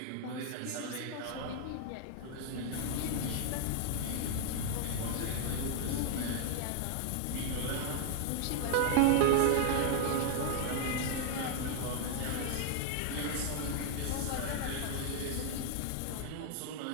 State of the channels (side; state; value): both; different; correlation 0.00